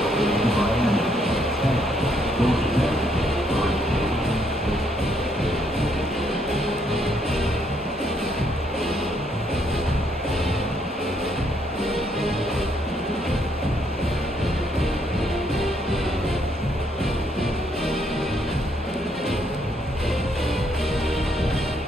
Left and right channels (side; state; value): both; normal; correlation 0.72